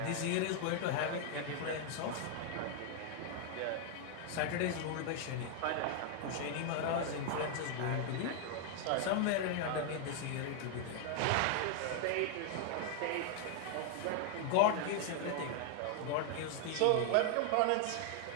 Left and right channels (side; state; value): both; different; correlation 0.00